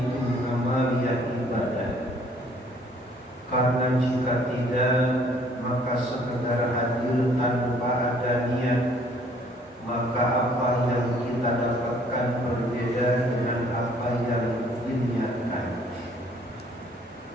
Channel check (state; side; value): normal; both; correlation 0.60